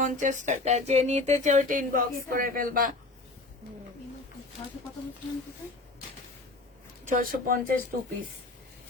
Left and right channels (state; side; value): quieter; right; 3.1 dB